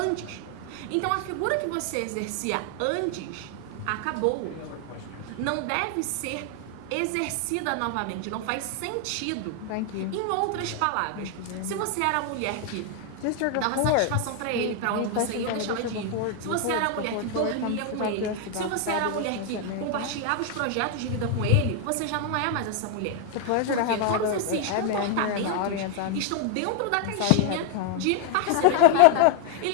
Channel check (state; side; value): different; both; correlation 0.00